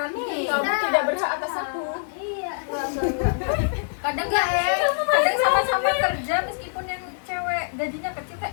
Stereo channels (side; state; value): right; silent; digital silence